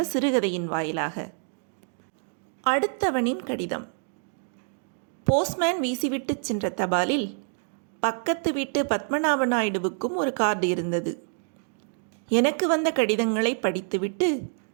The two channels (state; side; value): silent; left; 59 dB below the other